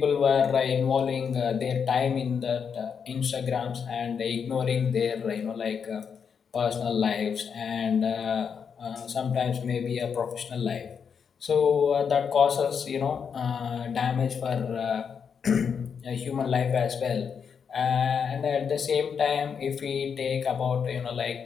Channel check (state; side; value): quieter; right; 6.7 dB